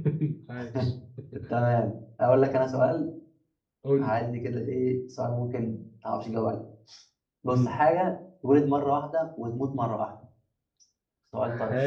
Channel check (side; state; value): both; identical; correlation 1.00